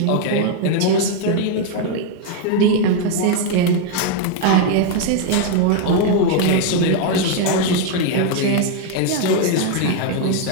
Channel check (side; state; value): both; different; correlation 0.00